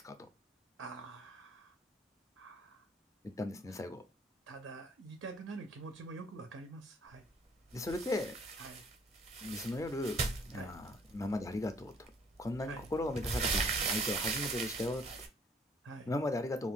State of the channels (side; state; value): both; normal; correlation 0.60